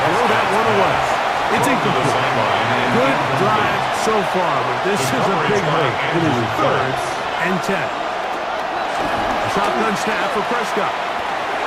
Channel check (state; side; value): identical; both; correlation 1.00